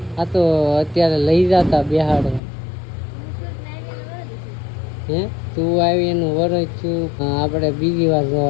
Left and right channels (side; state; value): right; drops out; at 2.4 s